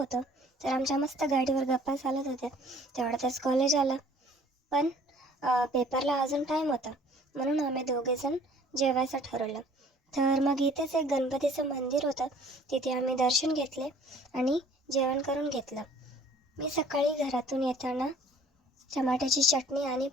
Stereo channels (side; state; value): both; normal; correlation 0.54